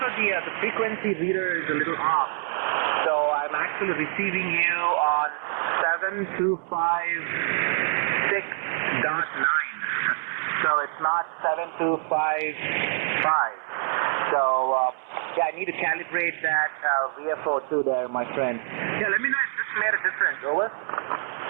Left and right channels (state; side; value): silent; left; 61 dB below the other